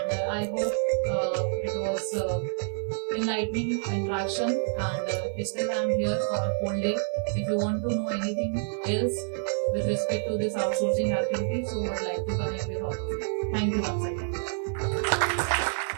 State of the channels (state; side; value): silent; left; digital silence